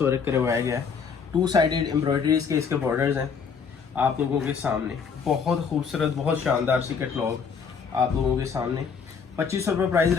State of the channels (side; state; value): right; quieter; 6.0 dB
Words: वर्क करवाया गया है। 2 साइडेड एम्ब्रॉयडरीज के इसके बॉर्डर्स हैं आप लोगों के सामने। बहुत खूबसूरत, बहुत शानदार सी कैटलॉग आप लोगों के सामने। 2500 रुपये प्राइस